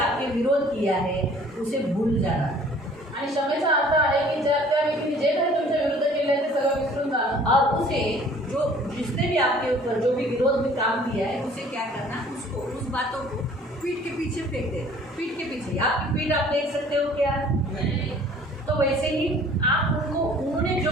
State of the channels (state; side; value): normal; both; correlation 0.53